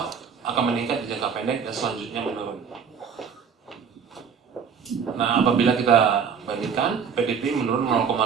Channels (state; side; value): quieter; left; 6.7 dB